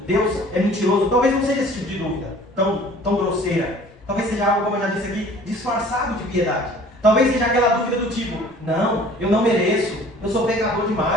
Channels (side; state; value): both; normal; correlation 0.50